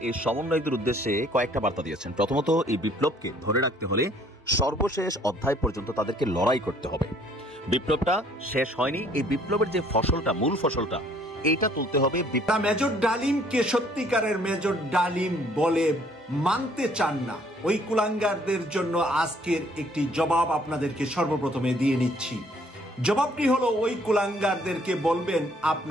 এই সমন্বয়কদের উদ্দেশ্যে কয়েকটা বার্তা দিয়েছেন। প্রথমত, এই বিপ্লবকে ধরে রাখতে হলে সর্বশেষ অধ্যায় পর্যন্ত তাদেরকে লড়াই করতে হবে। বিপ্লবটা শেষ হয়নি, এই বিপ্লবের যে ফসলটা, মূল ফসলটা, এইটা তুলতে হবে। মেজর ডালিমকে সত্যিকারের মেজর ডালিম বলে মানতে চান না ওই কুলাঙ্গারদের জন্য আজকের একটি জবাব আপনাদেরকে সর্বপ্রথমে দিয়ে নিচ্ছি। জবাবটি হলো, ওই কুলাঙ্গারদেরকে বলবেন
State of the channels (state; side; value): normal; both; correlation 0.61